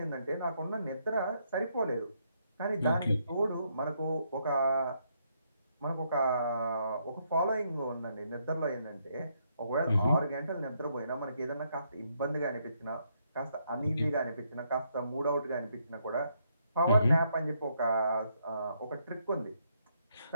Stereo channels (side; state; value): both; inverted; correlation -0.75